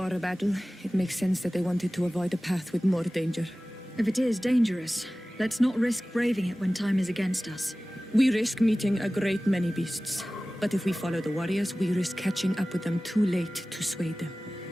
a battle, it makes sense that they wanted to avoid a path with more danger. If it is dangerous, let's not risk braving it when time is against us. We risk meeting a great many beasts. But if we follow the warriors, we risk catching up with them too late to sway them.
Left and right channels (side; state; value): both; normal; correlation 0.97